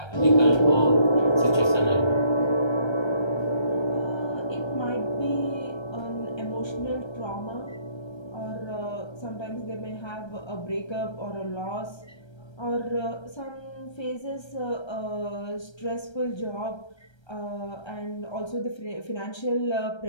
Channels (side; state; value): right; late; 1.3 ms